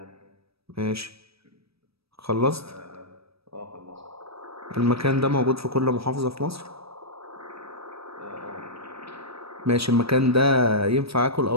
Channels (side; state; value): left; late; 0.77 ms